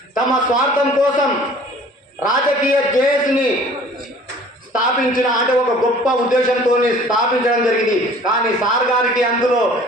తమ స్వార్థం కోసం రాజకీయ జేఏసీని స్థాపించిన, అంటే ఒక గొప్ప ఉద్దేశంతో స్థాపించడం జరిగింది. కానీ సార్ గారికి అందులో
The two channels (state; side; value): normal; both; correlation 0.49